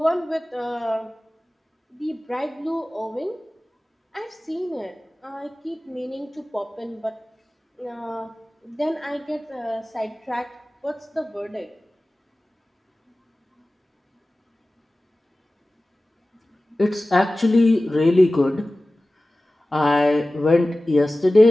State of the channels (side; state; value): both; normal; correlation 0.97